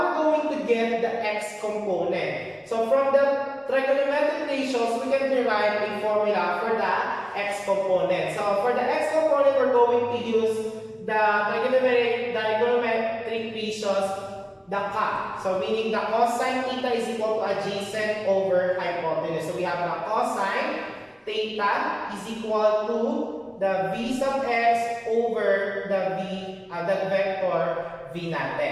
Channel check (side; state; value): both; identical; correlation 1.00